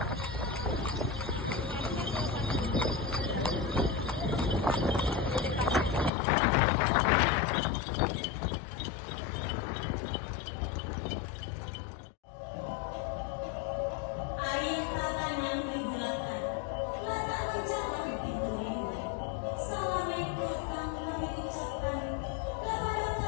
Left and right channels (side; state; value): right; drops out; at 6.1 s